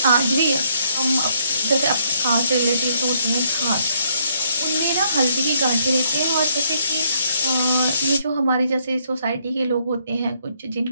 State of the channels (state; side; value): inverted; both; correlation -0.70